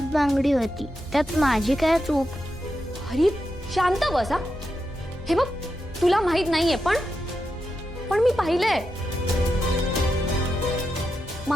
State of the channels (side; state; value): both; normal; correlation 0.87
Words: बांगडी होती, त्यात माझी काय चूक? हरी शांत बसा. हे बघ, तुला माहित नाहीये पण मी पाहिलंय.